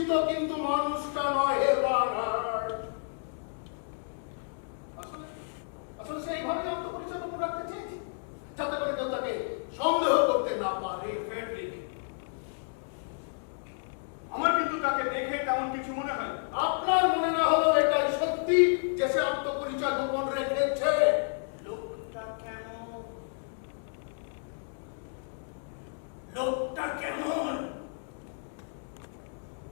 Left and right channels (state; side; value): silent; right; digital silence